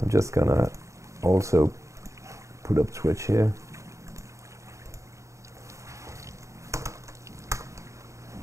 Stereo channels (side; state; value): left; late; 0.15 ms